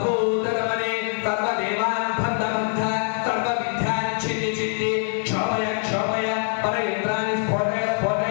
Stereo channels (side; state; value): right; silent; digital silence